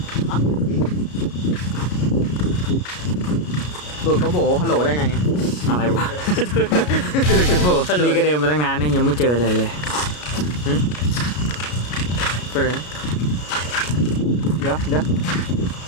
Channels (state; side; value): late; right; 33 ms